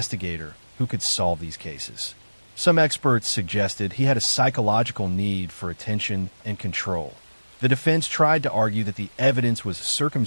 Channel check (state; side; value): inverted; both; correlation -1.00